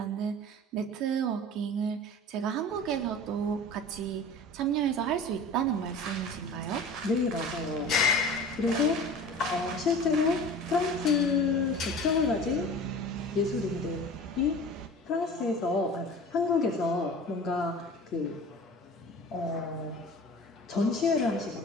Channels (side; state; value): both; normal; correlation 0.39